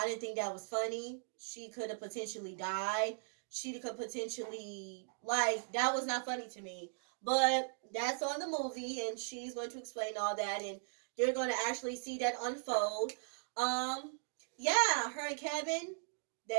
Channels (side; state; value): left; silent; digital silence